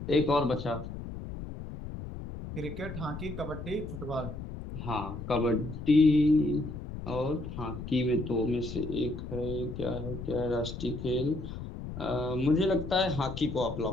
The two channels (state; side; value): noise; left; rumble, 9 dB below the sound